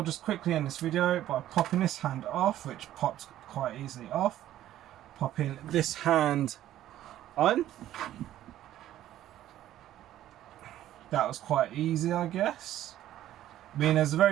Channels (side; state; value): left; quieter; 12.9 dB